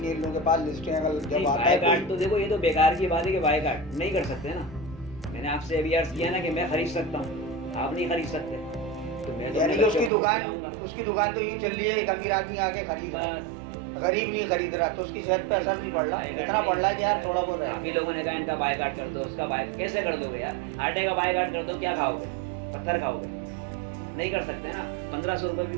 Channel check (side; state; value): left; drops out; at 10.1 s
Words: इन लोगों के पास। लिस्टें अगर जब आता है बायकाट तो देखो, ये तो बेकार की बात है कि बायकाट नहीं कर सकते ना। मैंने आपसे अभी अर्ज किया ना कि मैं खरीद सकता हूँ, आप नहीं खरीद सकते, तो मैं तो यानी कि अपने बच्चों को खिलाऊंगा। उसकी दुकान तो यूँ चल रही है, एक अमीर आदमी आके खरीद रहा है, बस गरीब नहीं खरीद रहा, तो उसकी सेहत पे असर नहीं पड़ रहा, इतना पड़ रहा है कि यार थोड़ा बहुत है। काफी लोगों ने कहा इनका बायकाट कर दो, उसका बाय कैसे कर दोगे यार? आटे का बायकाट कर दो, क्या खाओगे? पत्थर खाओगे? नहीं कर सकते ना। 1500 रुपये